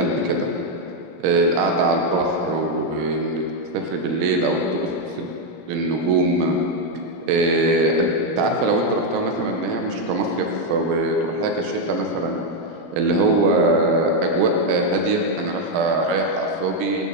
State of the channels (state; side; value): late; left; 17 ms